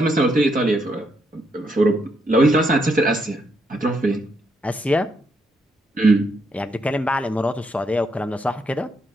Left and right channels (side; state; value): both; normal; correlation 0.77